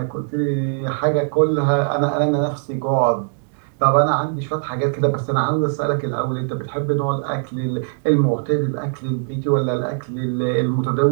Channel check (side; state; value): left; silent; digital silence